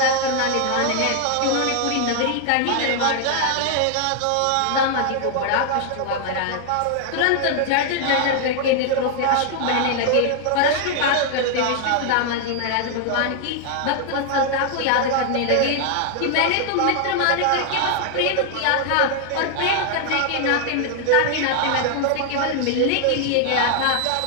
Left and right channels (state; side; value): different; both; correlation 0.00